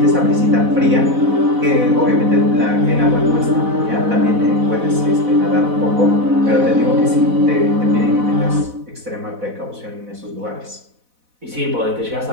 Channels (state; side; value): late; left; 4.1 ms